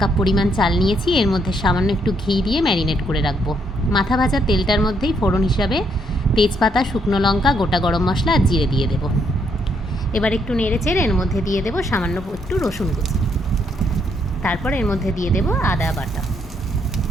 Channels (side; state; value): both; normal; correlation 0.73